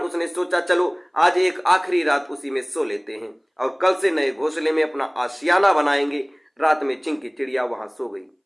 उसने सोचा चलो आज एक आखिरी रात उसी में सो लेते हैं और कल से नए घोंसले में अपना आशियाना बनाएंगे। रात में चिंकी चिड़िया वहां सो गई।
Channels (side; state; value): both; identical; correlation 1.00